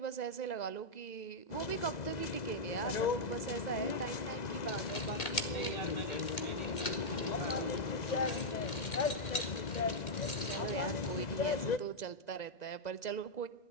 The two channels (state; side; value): late; right; 2.1 ms